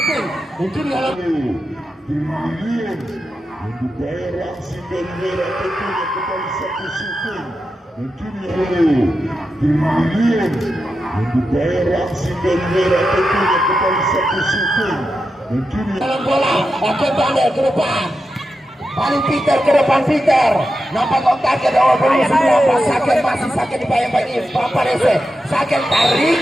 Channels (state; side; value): normal; both; correlation 0.89